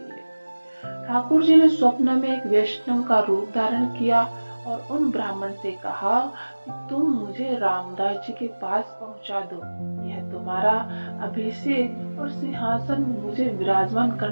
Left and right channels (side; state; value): both; inverted; correlation -1.00